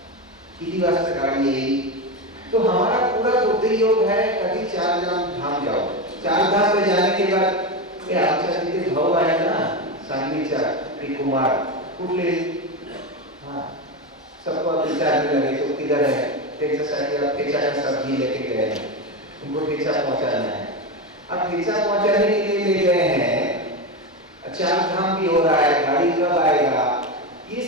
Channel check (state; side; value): normal; both; correlation 0.16